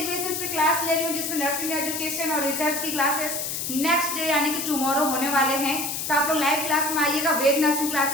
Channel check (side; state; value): left; noise; hiss, 3 dB below the sound